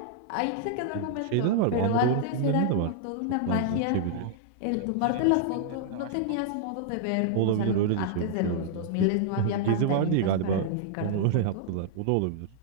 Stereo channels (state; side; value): different; both; correlation -0.01